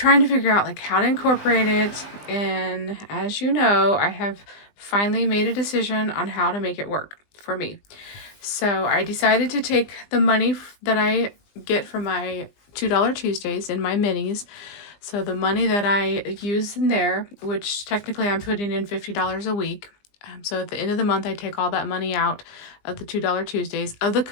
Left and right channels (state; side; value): late; right; 20 ms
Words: to figure out like how to incorporate it, and as you know, I have finally made a decision on how to make it work for me. So I decided to take the money that I get from my $2 Tuesdays in my minis. So the money that I use in there, which technically I'm putting in $50 a week. So at the end of the month, I take all that money out of the $2 Tuesdays, of the